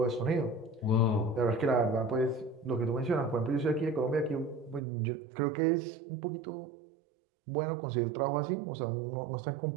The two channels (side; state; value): left; drops out; at 4.8 s